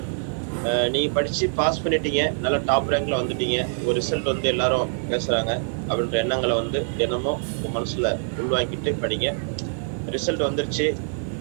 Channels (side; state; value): left; silent; 62 dB below the other